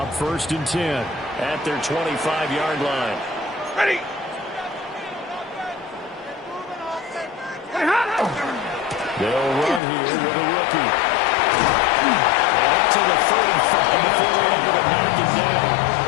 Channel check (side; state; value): right; drops out; at 9.8 s